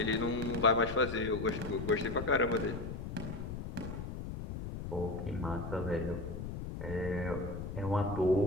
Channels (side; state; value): left; noise; rumble, 7 dB below the sound